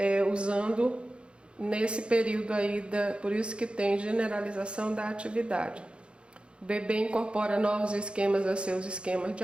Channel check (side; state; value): left; late; 0.056 ms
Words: usando nesse período aí, por isso que tem generalização da atividade. O bebê incorpora novos esquemas a seus esquemas